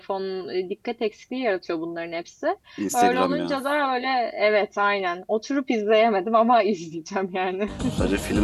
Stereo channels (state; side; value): identical; both; correlation 1.00